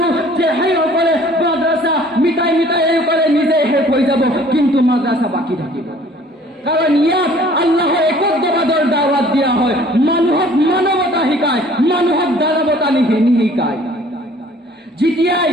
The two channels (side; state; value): both; normal; correlation 0.54